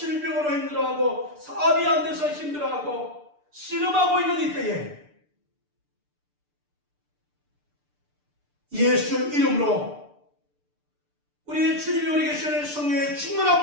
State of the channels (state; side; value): late; left; 6.8 ms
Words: 힘들어하고 사업이 안 돼서 힘들어하고 씨름하고 있는 이때에 예수 이름으로 우리 주님이 우리에게 주시는 성령의